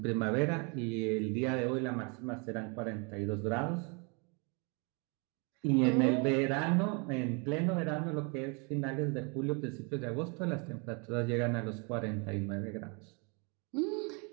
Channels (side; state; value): left; quieter; 33.2 dB